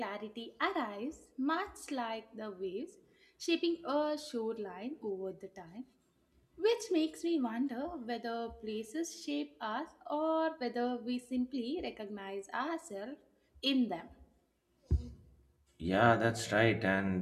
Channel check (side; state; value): both; identical; correlation 1.00